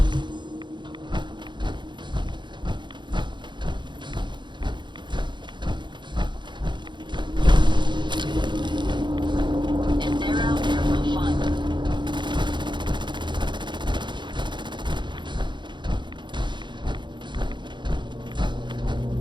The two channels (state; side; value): late; left; 0.22 ms